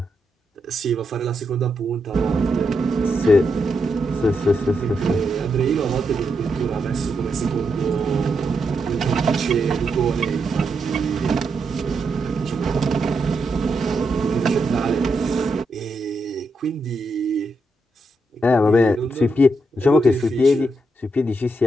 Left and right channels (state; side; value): normal; both; correlation 0.83